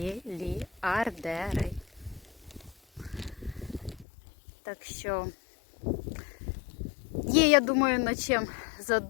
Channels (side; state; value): right; drops out; at 4.0 s